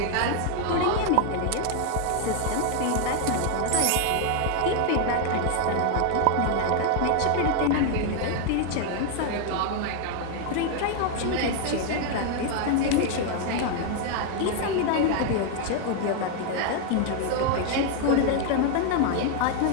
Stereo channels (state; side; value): different; both; correlation 0.00